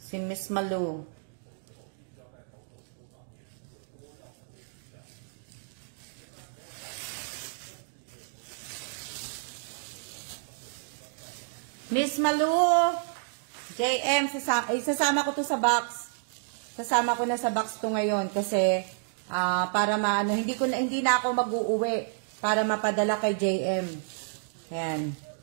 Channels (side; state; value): left; silent; digital silence